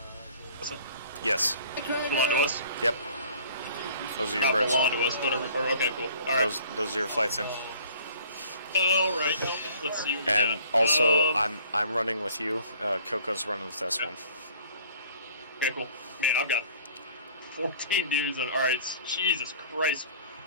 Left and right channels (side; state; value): both; inverted; correlation -0.52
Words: What's that? Yes. Belong to us? Yep. Those are your Not birds. belong to us, but okay, cool. Alright. Those are your flights in. Alright, let's see what we And got. also, I'm running with you. Coco's running with this one. Okay, cool. Man, I've got 14 dudes on. Alright, Jesus Christ.